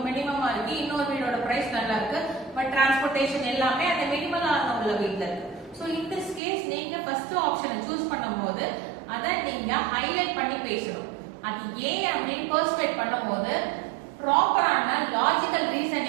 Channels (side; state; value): left; drops out; at 6.4 s